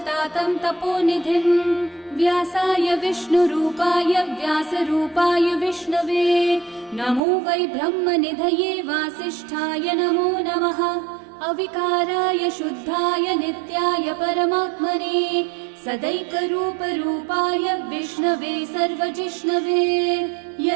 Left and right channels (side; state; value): left; drops out; at 7.2 s